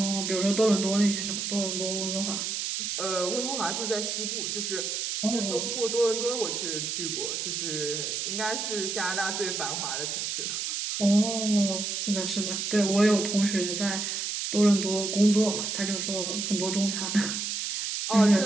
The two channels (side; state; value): right; noise; hiss, 2 dB below the sound